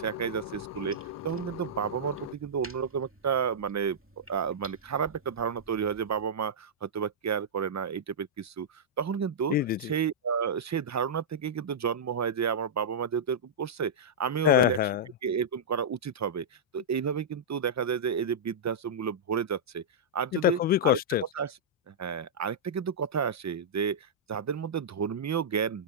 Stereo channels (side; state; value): both; normal; correlation -0.12